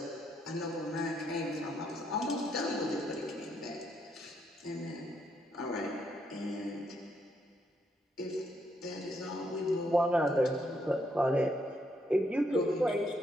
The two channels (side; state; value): both; normal; correlation 0.75